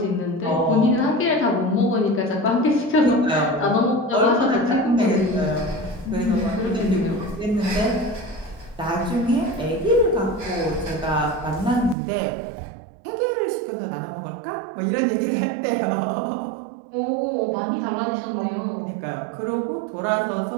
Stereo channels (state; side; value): drops out; left; at 12.0 s